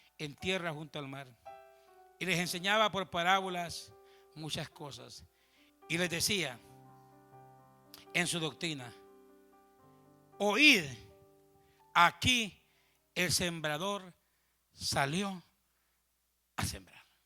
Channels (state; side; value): identical; both; correlation 1.00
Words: en tierra junto al mar. Y les enseñaba por parábolas muchas cosas. Y les decía en su doctrina: oíd, aquí el sembrador salió a sembrar.